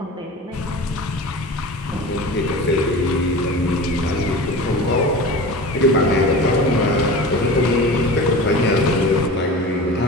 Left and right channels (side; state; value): both; normal; correlation 0.34